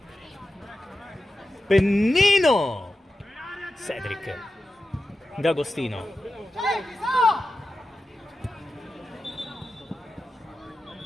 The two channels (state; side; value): normal; both; correlation 0.92